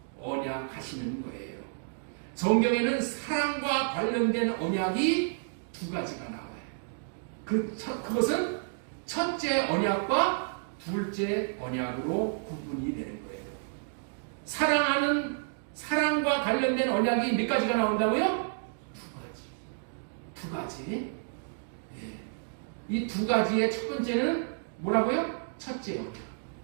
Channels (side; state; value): left; silent; digital silence